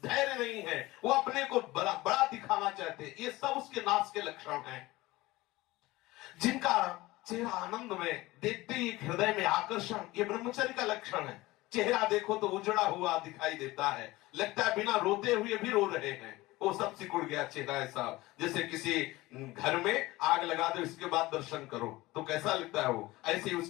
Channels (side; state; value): right; quieter; 19.4 dB